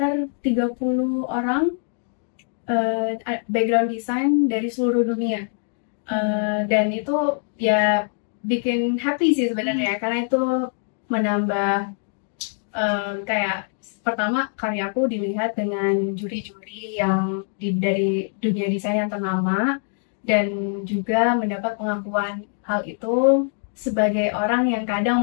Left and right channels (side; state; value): right; silent; 58 dB below the other